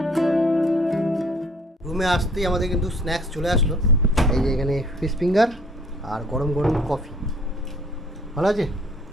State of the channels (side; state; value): both; normal; correlation 0.57